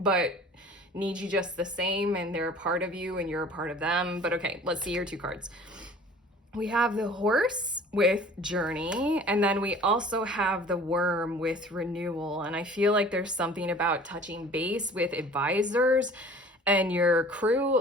need you just the same, and they're a part of you and you're a part of them. But okay, let's see your 2 cards. We have the Horse with Journey, and then we also have the Worm with Renewal. And I feel like there's something about touching base with advisors, and your crew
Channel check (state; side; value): normal; both; correlation 0.47